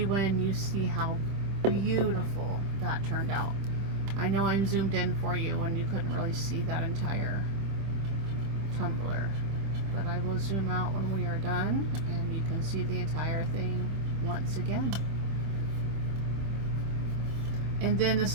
when you see how beautiful that turned out. I know I'm zoomed in for you and you couldn't really see that entire tumbler, but I will zoom out when we are done and you can see the entire thing once again. And then the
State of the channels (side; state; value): left; late; 25 ms